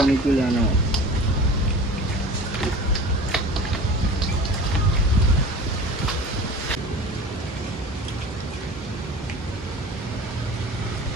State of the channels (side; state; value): both; normal; correlation 0.39